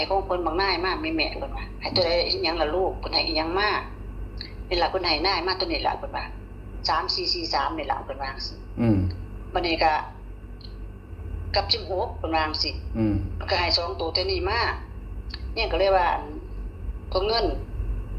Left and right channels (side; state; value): both; identical; correlation 1.00